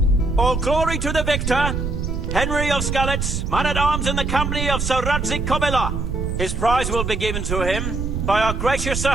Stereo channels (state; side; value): noise; right; rumble, 3 dB below the sound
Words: All glory to the victor, Henry of Skalitz, man-at-arms in the company of Sir Radzik Kobila. His prize will be given to him by our gracious Sir